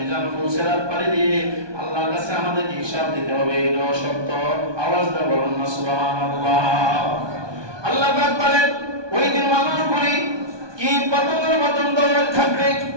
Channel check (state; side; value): late; left; 1.2 ms